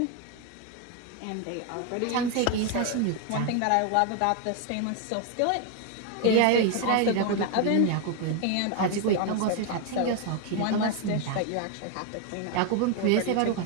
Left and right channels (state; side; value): different; both; correlation 0.01